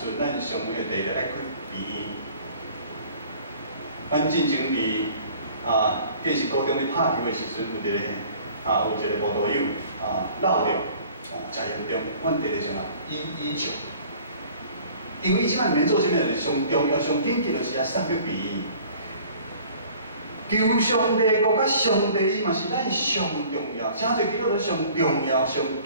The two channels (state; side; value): inverted; both; correlation -0.50